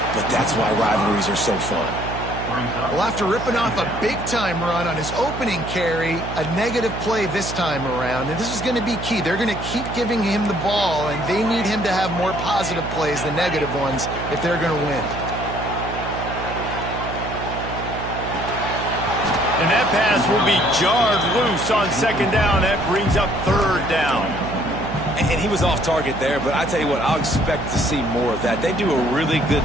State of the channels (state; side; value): noise; right; hum, 7 dB below the sound